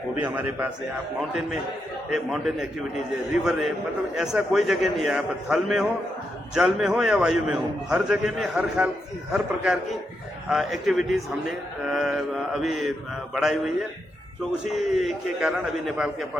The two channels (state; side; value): normal; both; correlation 0.83